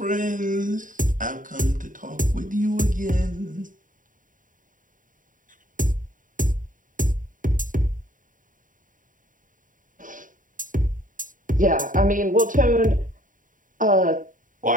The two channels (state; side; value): late; left; 0.38 ms